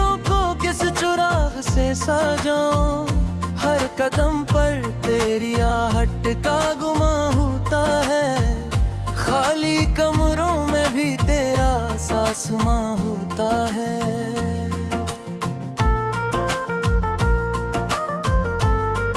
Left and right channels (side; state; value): both; identical; correlation 1.00